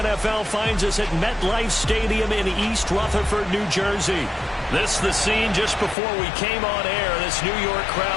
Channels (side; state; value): right; drops out; at 6.0 s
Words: finds us at MetLife Stadium in East Rutherford, New Jersey. This the scene just before we came on air. This New York